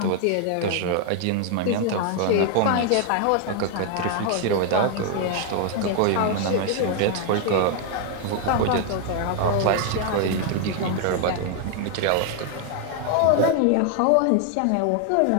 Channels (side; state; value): both; different; correlation 0.00